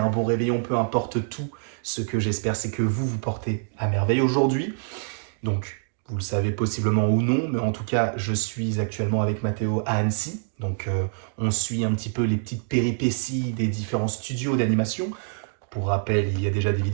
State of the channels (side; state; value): left; silent; digital silence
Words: bon réveillon, peu importe tout. Ce que j'espère, c'est que vous vous portez à merveille aujourd'hui. Donc, vous le savez possiblement ou non, mais en tout cas, je suis actuellement avec Mathéo à Annecy. Donc, on suit un petit peu les petites péripéties des différents studios d'animation. Pour rappel, il y a déjà des